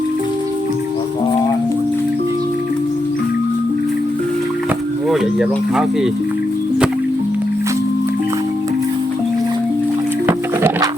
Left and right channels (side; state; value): both; normal; correlation 0.84